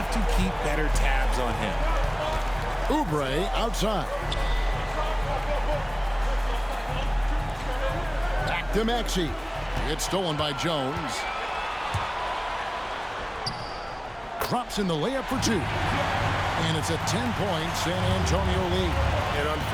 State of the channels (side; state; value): both; identical; correlation 1.00